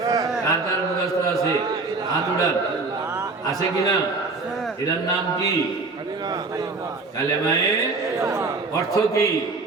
কার কার মুখস্থ আছে? আতুডান। আছে কিনা? এটার নাম কি? কালেমায়ে। অর্থ কি?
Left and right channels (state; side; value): quieter; left; 3.8 dB